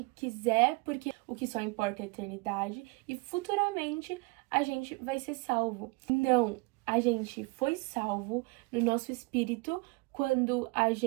quiser, porque o que só importa é a eternidade, e futuramente a gente vai ser salvo. Não, a gente foi salvo no nosso espírito quando a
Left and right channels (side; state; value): left; quieter; 26.7 dB